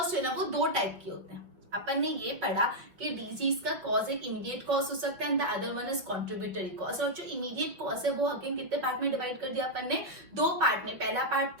जो है ना वो दो टाइप के होते हैं। अपन ने ये पढ़ा कि डिजीज का कॉज एक इमीडिएट कॉज हो सकता है and the other one is contributory cause. और जो इमीडिएट कॉज है वो अगेन कितने पार्ट में डिवाइड कर दिया अपन ने? दो पार्ट में। पहला पार्ट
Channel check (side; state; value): left; late; 5.7 ms